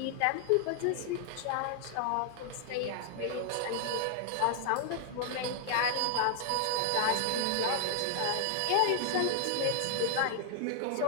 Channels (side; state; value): both; different; correlation 0.00